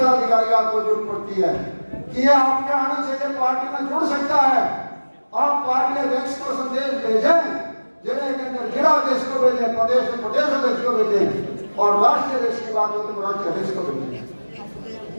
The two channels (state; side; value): inverted; both; correlation -1.00